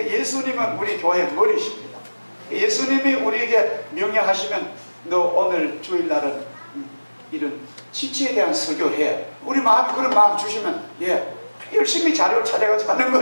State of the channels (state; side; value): inverted; both; correlation -1.00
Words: 예수님은 우리 교회 머리십니다. 예수님이 우리에게 명령하시면 너 오늘 주일날은 이런 지체에 대한 설교해. 우리 마음이 그런 마음 주시면 예, 열심히 자료를 찾아가서 하는